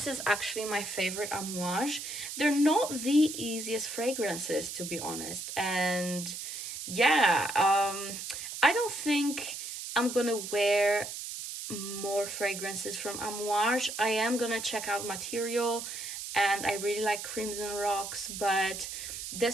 is actually my favorite Amouage. They're not the easiest fragrances, to be honest. And yeah, I don't think I'm gonna wear more fragrances from Amouage. I am gonna check out Material, and I really like Crimson Rocks, but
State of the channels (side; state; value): right; noise; hiss, 7 dB below the sound